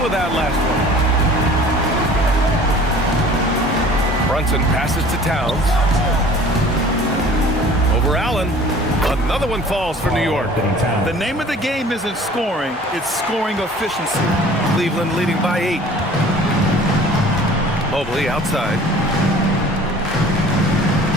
with that last one. Brunson passes to Towns. Over Allen. Another one falls for New York. The name of the game isn't scoring, it's scoring efficiency. Cleveland leading by 8. Mobley outside.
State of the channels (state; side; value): normal; both; correlation 0.48